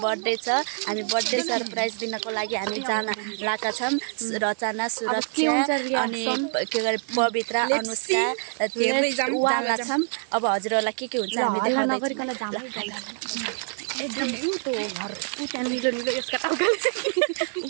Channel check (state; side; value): silent; left; 61 dB below the other